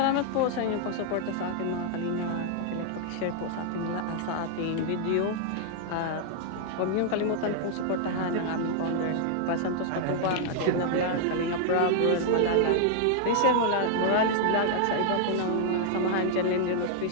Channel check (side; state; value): both; different; correlation -0.01